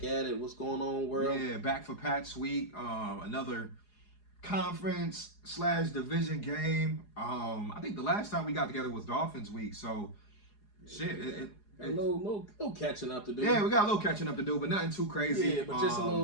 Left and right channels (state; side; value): late; right; 4.8 ms